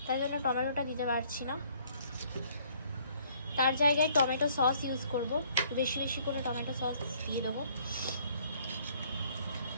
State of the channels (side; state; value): both; inverted; correlation -0.61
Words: তাই জন্য টমেটোটা দিতে পারছি না। তার জায়গায় টমেটো সস ইউজ করব, বেশি বেশি করে টমেটো সস দিয়ে দেবো।